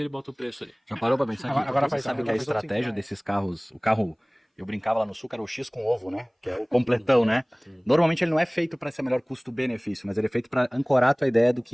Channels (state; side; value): identical; both; correlation 1.00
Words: bota o preço ali. Já parou pra pensar que Agora você sabe que a estratégia desses carros, o carro, eu brincava lá no sul, que era o X com ovo, né? Que é o completão, né? Normalmente ele não é feito para ser melhor custo-benefício, mas ele é feito para ancorar a tua ideia do